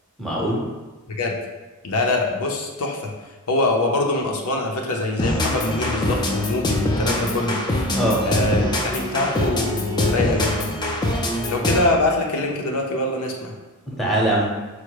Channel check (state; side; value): normal; both; correlation 0.25